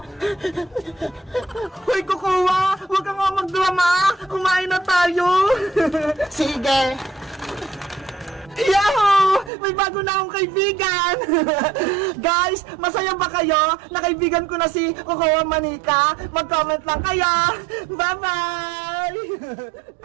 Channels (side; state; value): left; drops out; at 9.5 s